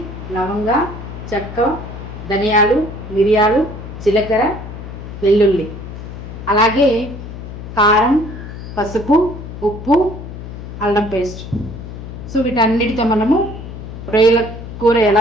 లవంగ, చెక్క, ధనియాలు, మిరియాలు, జీలకర్ర, వెల్లుల్లి, అలాగే కారం, పసుపు, ఉప్పు, అల్లం పేస్ట్. సో వీటన్నిటితో మనము రొయ్యల కూర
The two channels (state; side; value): noise; left; hum, 11 dB below the sound